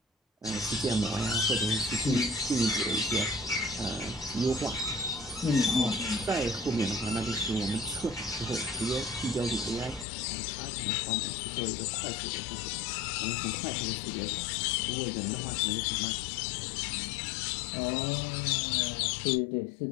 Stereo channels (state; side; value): drops out; right; at 10.1 s